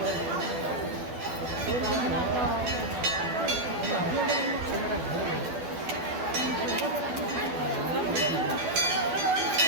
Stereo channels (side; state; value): left; late; 12 ms